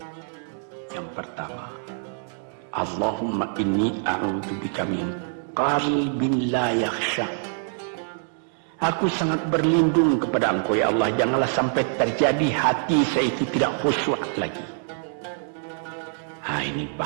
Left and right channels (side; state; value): left; silent; digital silence